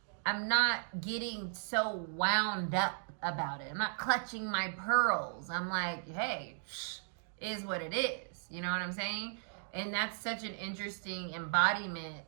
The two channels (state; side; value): silent; left; digital silence